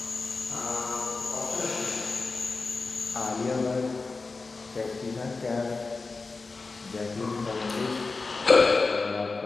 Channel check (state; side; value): quieter; right; 4.0 dB